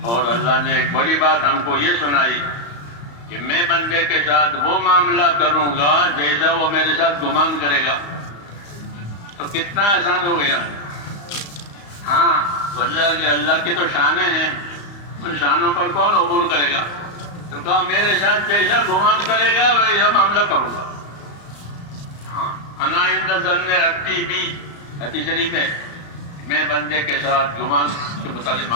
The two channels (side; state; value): right; late; 35 ms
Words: اور اللہ نے ایک بڑی بات ہم کو یہ سنائی کہ میں بندے کے ساتھ وہ معاملہ کروں گا جیسا وہ میرے ساتھ گمان کرے گا. تو کتنا آسان ہو گیا. ہاں، اللہ کی تو شانیں ہیں، ان شانوں پر کون عبور کرے گا؟ تو کہا میرے ساتھ جیسا گمان کرے گا ویسا معاملہ کروں گا. ہاں، انا عند ظن عبدی بی، حدیث شریف ہے، میں بندے کے ساتھ گمان کے مطابق